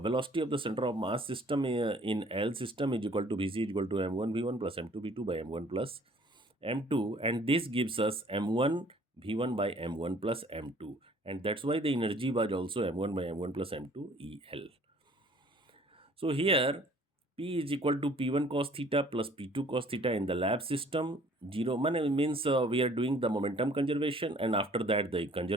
velocity of the center of mass system in L system is equal to Vc is equal to m1 v1 plus m2 v2 by m1 plus m2, and this gives us m1 v1 by m1 plus m2, and that's why the energy was also m1 by m1 plus m2 El. So here P is equal to P1 cos theta plus P2 cos theta in the lab system. 0 means we are doing the momentum conservation, and after that the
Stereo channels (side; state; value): both; normal; correlation 0.55